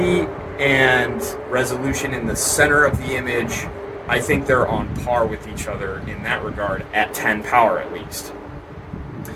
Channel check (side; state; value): both; identical; correlation 1.00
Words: and resolution in the center of the image, I think they're on par with each other in that regard at 10 power at least.